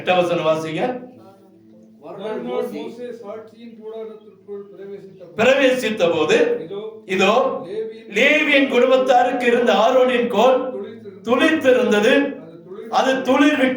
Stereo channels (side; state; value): both; identical; correlation 1.00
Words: வசனம் வாசிங்க. பிரவேசித்த போது இதோ லேவியின் குடும்பத்தாருக்கு இருந்த ஆரோனின் கோல் துளிர்த்திருந்தது. அது துளிர்